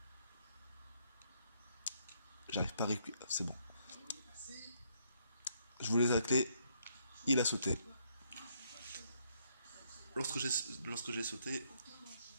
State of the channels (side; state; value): both; inverted; correlation -0.72